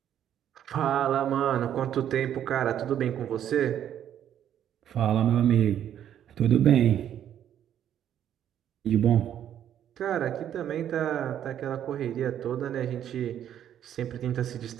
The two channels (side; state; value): left; quieter; 10.3 dB